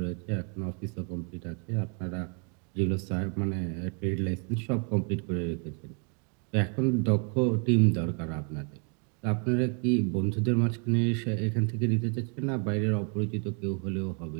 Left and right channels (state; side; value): quieter; left; 38.5 dB